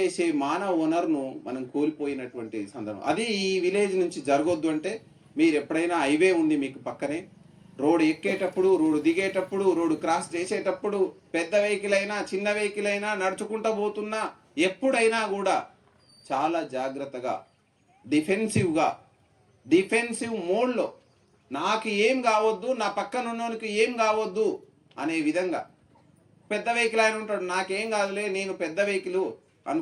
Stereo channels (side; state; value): both; identical; correlation 1.00